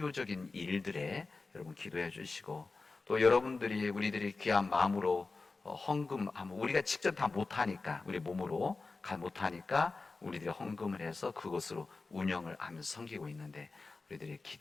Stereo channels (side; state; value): right; quieter; 3.9 dB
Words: 일들에 여러분 기도해 주시고, 또 우리들이 귀한 마음으로 헌금하면, 우리가 직접 다 못하니까, 우리 몸으로 못하니까 우리들이 헌금을 해서 그것으로 운영을 하면서 섬기고 있는데, 우리들이